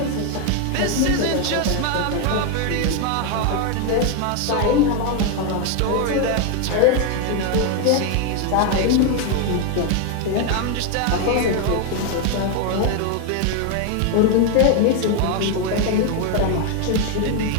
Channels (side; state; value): both; different; correlation 0.01